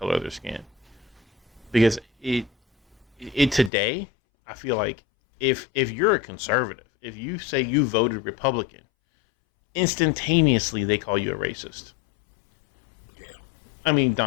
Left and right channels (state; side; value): drops out; right; at 3.7 s